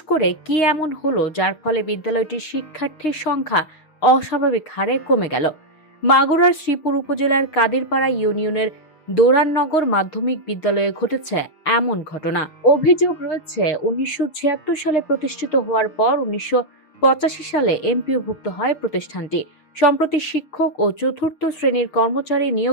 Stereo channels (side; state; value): right; late; 6.5 ms